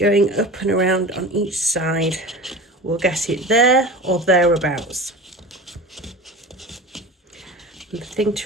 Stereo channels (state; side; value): normal; both; correlation 0.33